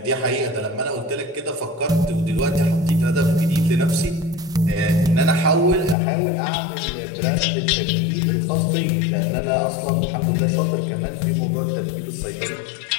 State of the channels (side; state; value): right; drops out; at 6.0 s